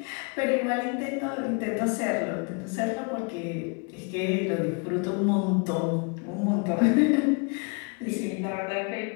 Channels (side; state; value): right; quieter; 34.5 dB